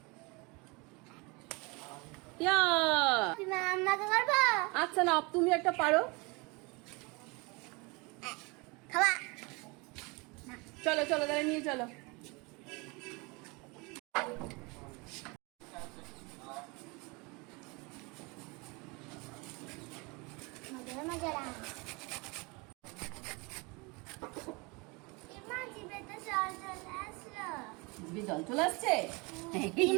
আচ্ছা না, তুমি একটা পারো। চলো চলো তাহলে নিয়ে চলো। জল চলে আসছে।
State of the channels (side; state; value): left; quieter; 27.7 dB